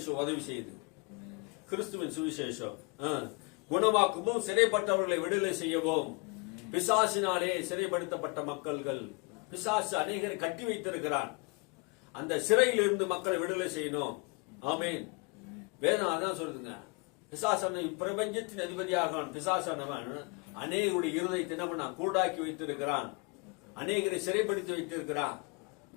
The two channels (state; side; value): quieter; right; 31.6 dB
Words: உதவி செய்யுது. கிறிஸ்துவின் சுவிசேஷம் குணமாக்கவும், சிறைப்பட்டவர்களை விடுதலை செய்யவும். பிசாசினாலே சிறைப்படுத்தப்பட்ட மக்கள்கள், பிசாசு அநேகரை கட்டி வைத்திருக்கிறான். அந்த சிறையில் இருந்து மக்களை விடுதலை செய்யணும். ஆமீன். வேதம் அதான் சொல்லுதுங்க. பிசாசான பிரபஞ்சத்தின் அதிபதியாக பிசாசானவன் அநேகருடைய இருதயத்தை என்ன கூடாக்கி வைத்திருக்கிறான், அநேகரை சிறைப்படுத்தி வைத்திருக்கிறான்.